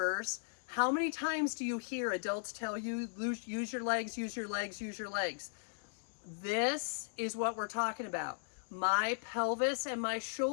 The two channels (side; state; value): right; silent; digital silence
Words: how many times do you hear adults tell you, use your legs, use your legs, use your legs? This is what we're talking about. My pelvis and my